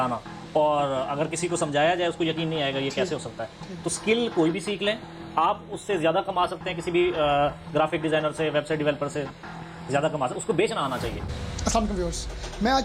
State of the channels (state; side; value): identical; both; correlation 1.00